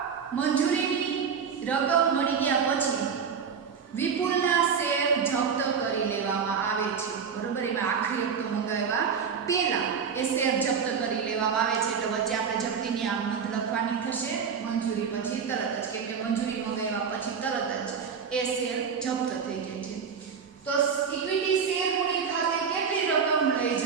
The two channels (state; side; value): quieter; left; 6.5 dB